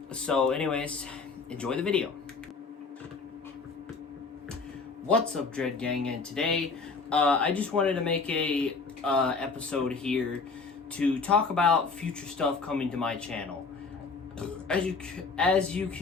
So anyways, enjoy the video. What's up, Dread Gang? And today, I just wanted to make a episode here to talk about future stuff coming to my channel. As you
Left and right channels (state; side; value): quieter; right; 4.5 dB